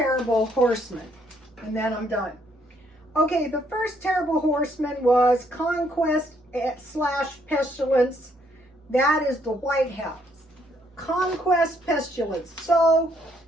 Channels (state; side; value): normal; both; correlation 0.69